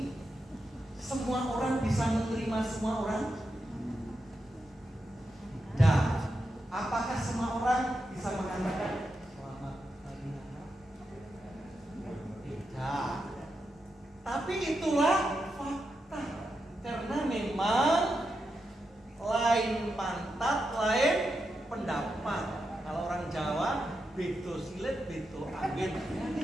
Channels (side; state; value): both; normal; correlation 0.87